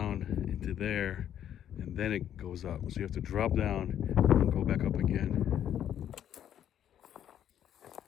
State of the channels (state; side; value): quieter; right; 10.2 dB